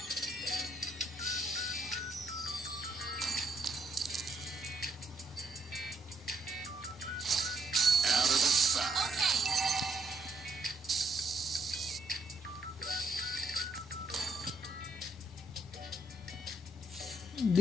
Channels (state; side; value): normal; both; correlation 0.74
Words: of the fire. Okay.